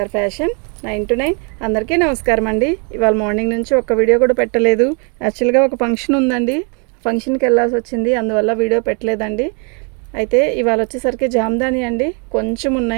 fashion 9 to 9. అందరికీ నమస్కారం అండి. ఇవాళ మార్నింగ్ నుంచి ఒక్క వీడియో కూడా పెట్టలేదు. యాక్చువల్గా ఒక ఫంక్షన్ ఉందండి, ఫంక్షన్కి వెళ్ళాల్సి వచ్చింది, అందువల్ల వీడియో పెట్టలేదండి. అయితే ఇవాళ వచ్చేసరికి జామ్దాని అండి, కొంచెం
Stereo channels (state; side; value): quieter; left; 36.6 dB